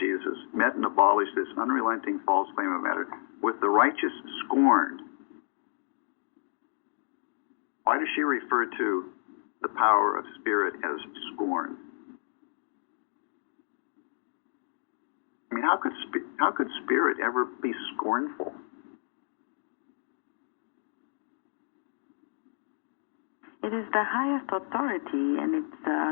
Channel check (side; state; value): right; silent; digital silence